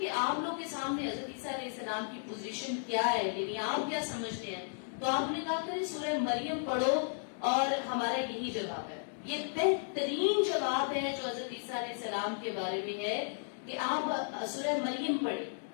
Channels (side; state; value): right; silent; digital silence